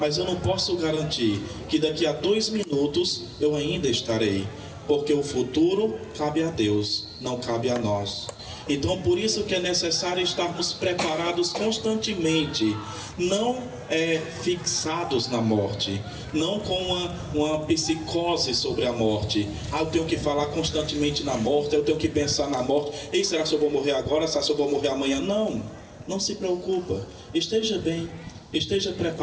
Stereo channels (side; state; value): both; identical; correlation 1.00